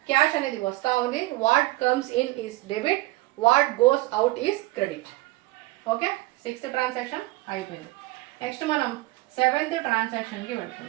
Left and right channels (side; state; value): left; quieter; 20.0 dB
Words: క్యాష్ అనేది వస్తూ ఉంది. What comes in is debit, what goes out is credit. Okay, 6th transaction అయిపోయింది. నెక్స్ట్ మనం 7th ట్రాన్సాక్షన్కి